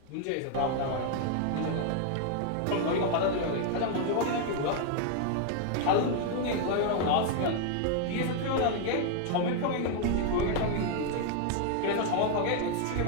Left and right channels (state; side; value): different; both; correlation 0.00